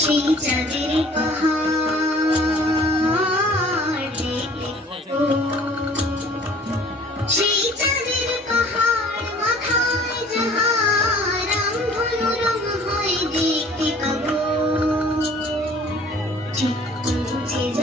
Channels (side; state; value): both; normal; correlation 0.50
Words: সেই চাঁদের পাহাড় দেখতে পাবো। সেই চাঁদের পাহাড় মাথায় যাহার রামধনু রং হয়ে দেখতে পাবো। ঠিক পৌঁছে